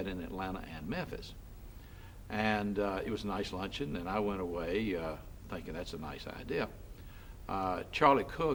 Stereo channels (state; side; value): identical; both; correlation 1.00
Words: in Atlanta and Memphis. And it was a nice luncheon, and I went away thinking that's a nice idea. Charlie